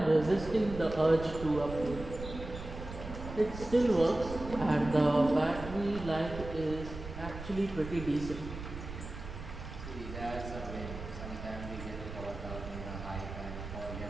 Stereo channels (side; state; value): right; noise; rumble, 10 dB below the sound